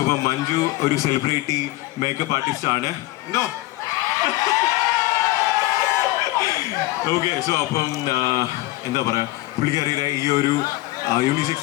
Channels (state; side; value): quieter; right; 18.9 dB